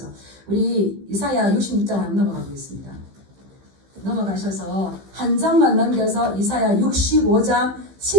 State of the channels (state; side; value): late; left; 15 ms